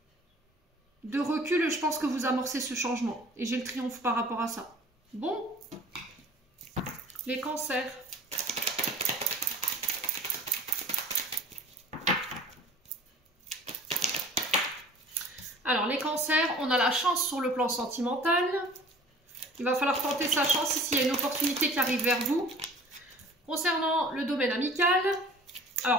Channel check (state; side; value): normal; both; correlation 0.47